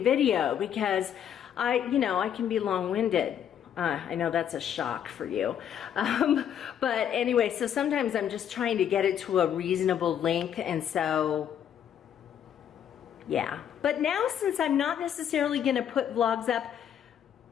video because you know, I can be long-winded. I know that's a shock for you. But anyway, so sometimes I'm just trying to get it to a reasonable length, and so, yeah. But now, since I'm not necessarily gonna put vlogs up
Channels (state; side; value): quieter; right; 9.4 dB